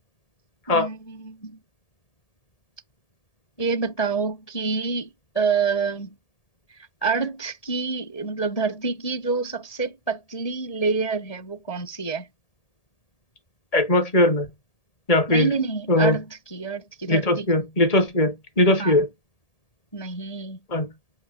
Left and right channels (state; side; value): late; right; 1.8 ms